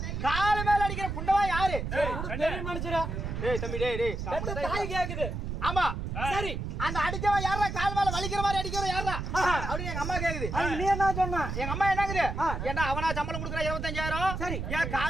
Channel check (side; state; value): right; noise; rumble, 4 dB below the sound